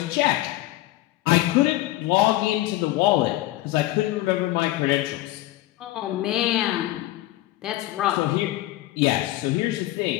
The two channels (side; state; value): right; quieter; 16.5 dB